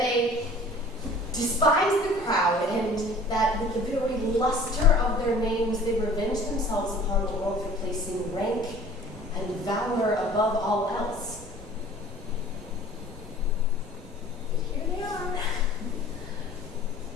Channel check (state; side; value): normal; both; correlation 0.48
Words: despised the crowd, and that with the very luster of their names they revenged themselves upon the world for placing rank and valor above all else. But here they are,